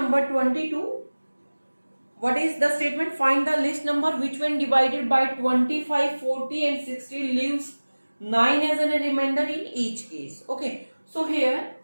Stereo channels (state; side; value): inverted; both; correlation -1.00